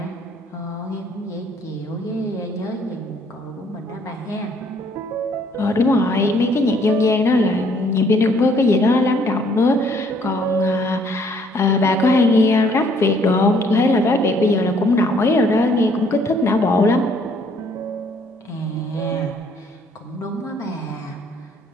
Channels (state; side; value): normal; both; correlation 0.63